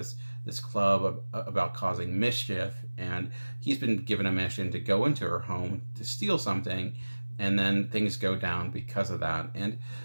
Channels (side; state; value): both; inverted; correlation -1.00